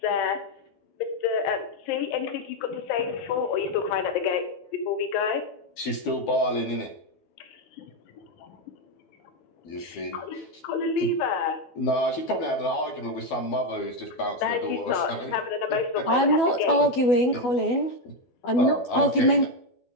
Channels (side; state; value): right; late; 12 ms